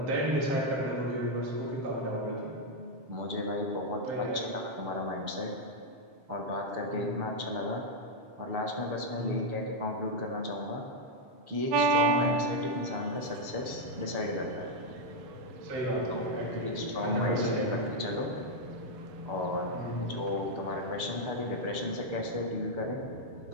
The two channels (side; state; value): left; late; 6.9 ms